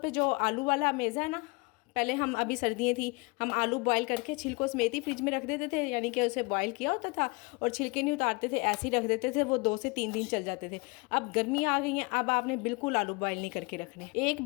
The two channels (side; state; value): right; quieter; 28.1 dB